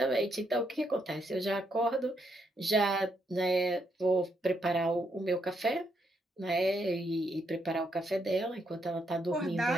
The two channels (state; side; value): normal; both; correlation 0.77